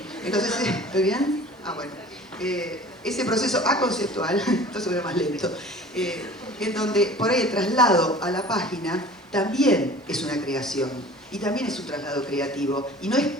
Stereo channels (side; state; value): both; normal; correlation 0.44